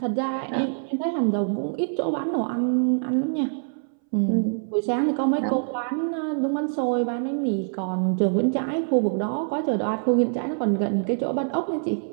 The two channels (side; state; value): left; silent; 62 dB below the other